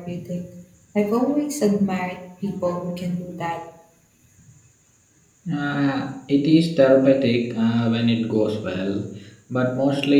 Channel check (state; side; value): identical; both; correlation 1.00